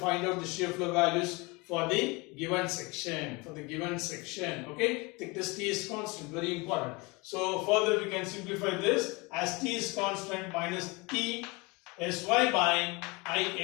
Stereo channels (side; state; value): right; quieter; 26.3 dB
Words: out the shear flow values for the given section. Okay, thickness T is constant, very important. So further we can simplify this as T is constant minus T Sy by